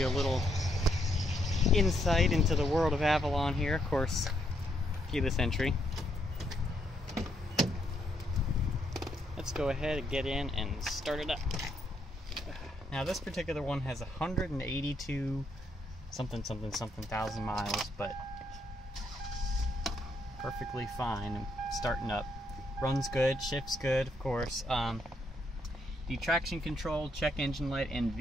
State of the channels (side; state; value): both; normal; correlation 0.75